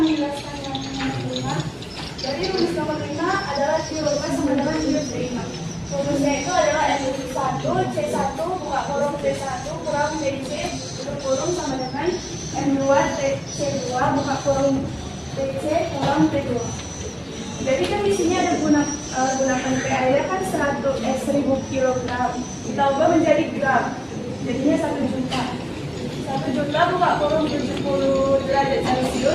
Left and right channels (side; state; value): both; identical; correlation 1.00